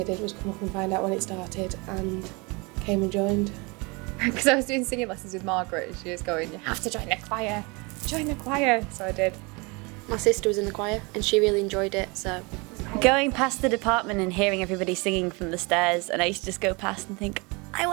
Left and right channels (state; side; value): quieter; left; 28.0 dB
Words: did was come up and find out when it started and came and joined. Because I was doing singing lessons with Margaret and she was going, you have to join the choir, join the choir. So I did. My sister was in the choir and she really enjoyed it, so. Going past the department and hearing everybody singing from the stairs, and I used to just go past and think, I